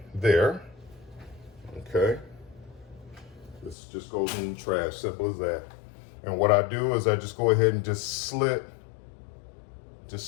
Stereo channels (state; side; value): drops out; right; at 3.8 s